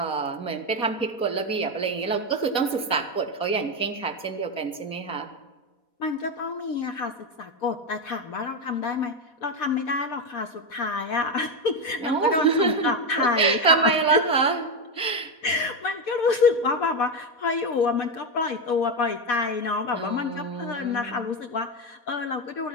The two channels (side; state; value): right; late; 4.2 ms